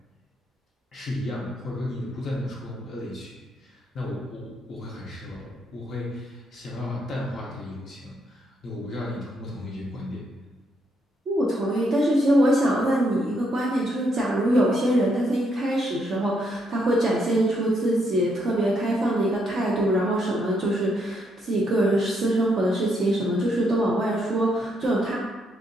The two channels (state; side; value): normal; both; correlation 0.76